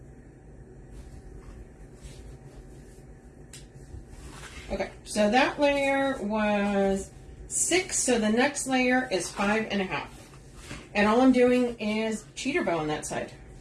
Okay, so that layer was 6, so the next layer is 5.5. And all I'm doing is cheater bow on that side.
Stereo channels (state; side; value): identical; both; correlation 1.00